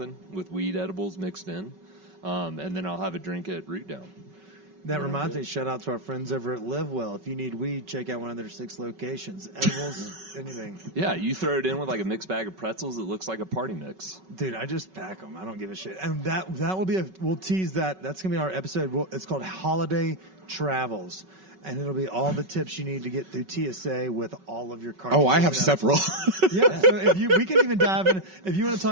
with weed edibles mixed in, and then I'll have a drink at Root Down. That reminds me, shout out to our friends over at Live Well. If you need weed, check out one of their 6 locations. Edibles, anything. Yeah, you throw it in with like a mixed bag of pretzels. It looks like a party mix. Dude, I just pack them. I don't give a shit. And that will be we'll tease that. That's going to be our episode. It's called Holiday Travels. And it'll be all the tips you need to get through TSA with all of your cards. Oh, I have several. Yeah, so we can even dive in. If you want to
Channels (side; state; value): left; late; 5.3 ms